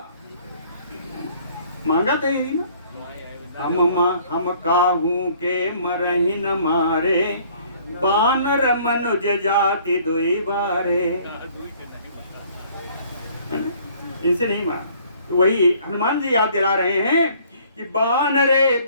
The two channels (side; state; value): both; inverted; correlation -0.57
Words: मांगा तो यही ना, हम काहू के मरहि न मारे बानर मनुज जाति दुई बारे, इनसे नहीं मारा। तो वही हनुमान जी याद दिला रहे हैं कि